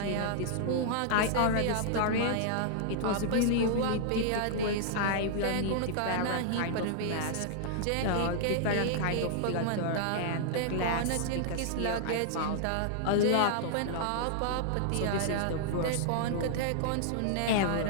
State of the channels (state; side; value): different; both; correlation -0.01